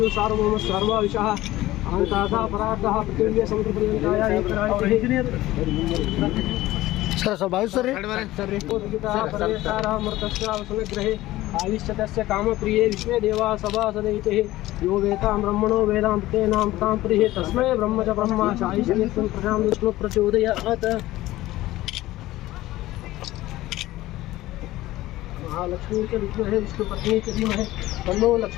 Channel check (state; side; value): quieter; right; 16.6 dB